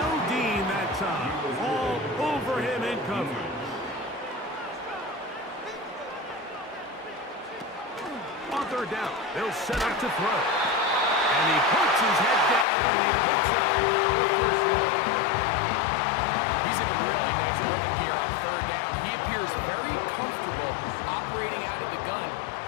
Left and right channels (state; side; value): drops out; right; at 12.7 s